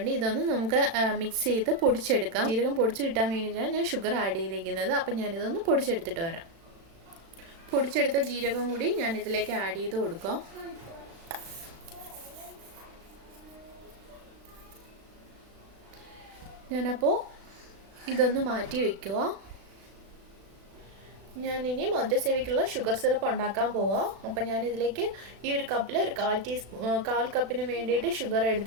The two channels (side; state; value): left; late; 36 ms